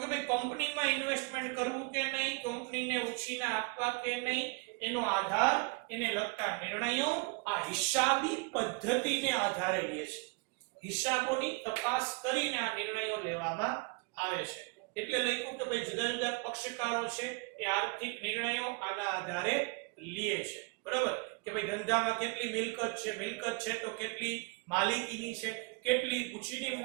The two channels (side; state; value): left; quieter; 30.1 dB